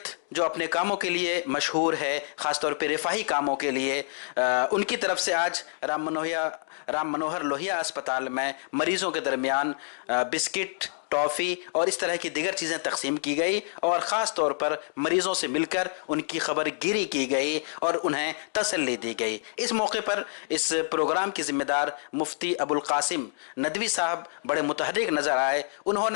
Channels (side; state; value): right; silent; digital silence